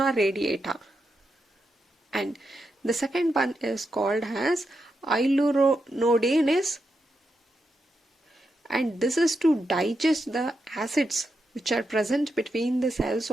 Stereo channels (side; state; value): both; normal; correlation 0.85